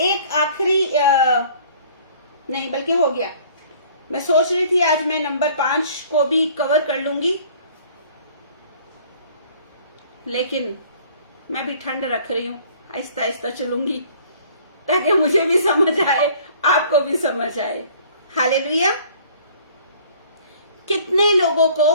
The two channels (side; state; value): both; inverted; correlation -0.54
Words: आखिरी नहीं, बल्कि हो गया, मैं सोच रही थी आज मैं नंबर 5 को भी कवर कर लूंगी, लेकिन मैं भी ठंड रख रही हूं, आहिस्ता आहिस्ता चलूंगी, ताकि मुझे भी समझ आए, आपको भी समझ आए। हालेलुया। कितने लोगों